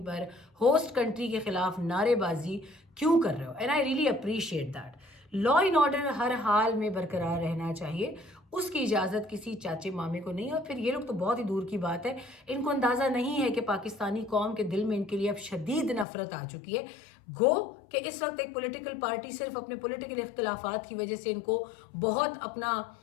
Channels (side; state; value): right; drops out; at 16.1 s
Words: پر ہوسٹ کنٹری کے خلاف نعرے بازی کیوں کر رہے ہو؟ And I really appreciate that. Law and order ہر حال میں برقرار رہنا چاہیے، اس کی اجازت کسی چاچے مامے کو نہیں. اور پھر یہ لوگ تو بہت ہی دور کی بات ہے، ان کو اندازہ نہیں ہے کہ پاکستانی قوم کے دل میں ان کے لیے اب شدید نفرت آ چکی ہے. گو کہ اس وقت ایک پولیٹیکل پارٹی صرف اپنے پولیٹیکل اختلافات کی وجہ سے ان کو بہت اپنا